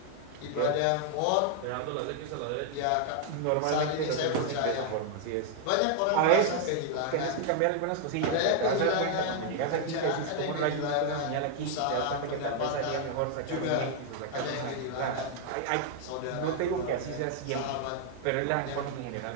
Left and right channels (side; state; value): both; different; correlation 0.00